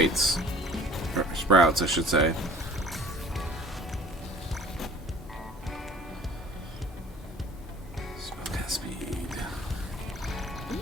or sprouts, I should say. Spellcast speed.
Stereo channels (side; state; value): both; normal; correlation 0.48